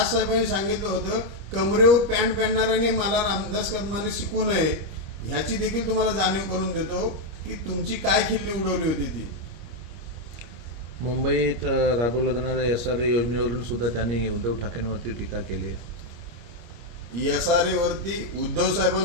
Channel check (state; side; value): late; left; 25 ms